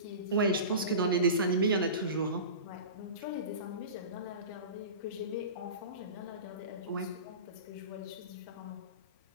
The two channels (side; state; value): both; inverted; correlation -0.32